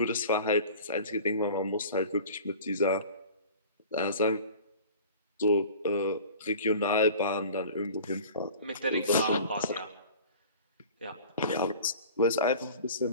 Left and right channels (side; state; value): both; inverted; correlation -0.42